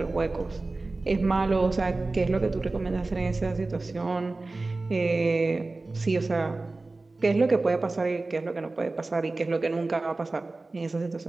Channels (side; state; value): left; quieter; 3.3 dB